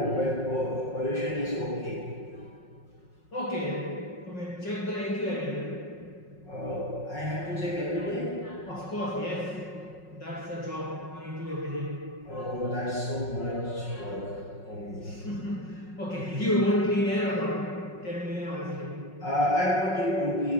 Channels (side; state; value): right; late; 5.5 ms